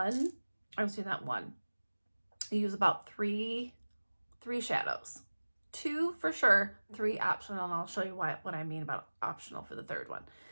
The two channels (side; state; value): both; inverted; correlation -1.00